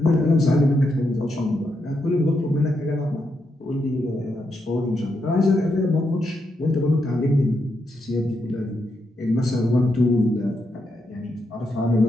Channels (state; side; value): normal; both; correlation 0.82